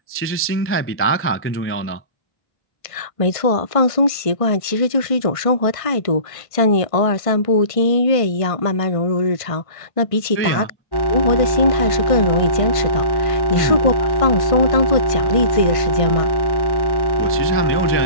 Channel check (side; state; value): right; late; 1.5 ms